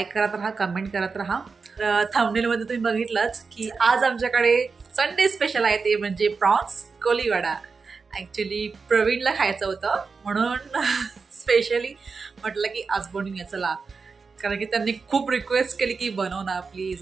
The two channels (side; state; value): left; quieter; 4.8 dB